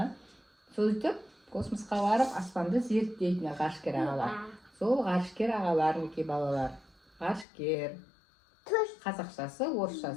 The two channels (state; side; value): drops out; right; at 7.5 s